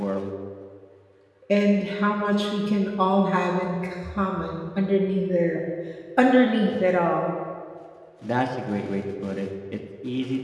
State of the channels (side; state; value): both; identical; correlation 1.00